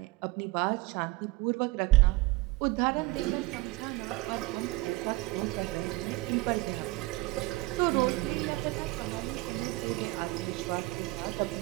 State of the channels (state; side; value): quieter; left; 21.0 dB